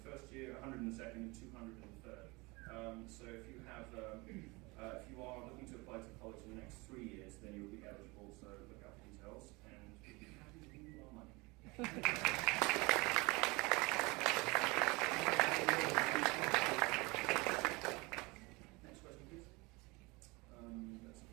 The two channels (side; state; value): left; quieter; 25.1 dB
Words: year, 100 in the second, and 200 in the third. So if you have, if you are looking to apply to college in the next 3 years, then you will be eligible. So look out for details, and we'll be happy to give you our money. Next question, please. That's